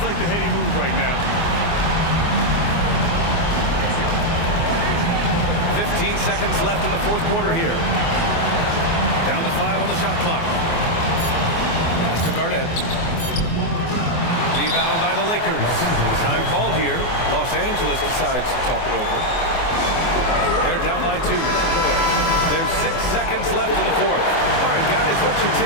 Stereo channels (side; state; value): right; late; 24 ms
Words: like the heady move right now. 15 seconds left in the fourth quarter here. Down to 5 on the shot clock. Pass to Garnett. Rebound by the Lakers. Time called here. Los Angeles decides to talk it over. They're down by 2. There's 6 seconds left in the fourth. All right, guys, what's your